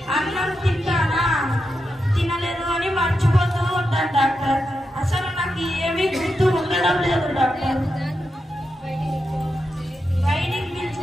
అన్నం తింటానా తినలేదు అని మర్చిపోతూ ఉంటాను డాక్టర్. ఏమీ గుర్తు ఉండడం లేదు డాక్టర్. బయటికి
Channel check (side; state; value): both; normal; correlation 0.87